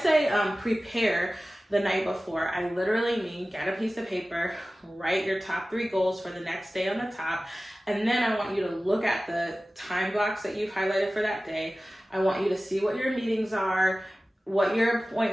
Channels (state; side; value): normal; both; correlation 0.96